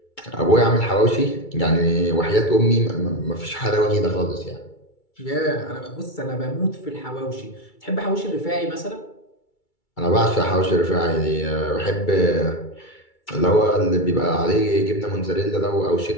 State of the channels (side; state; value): right; late; 2.3 ms